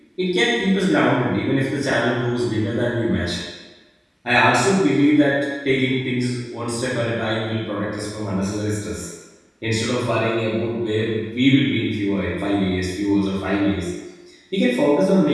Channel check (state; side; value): identical; both; correlation 1.00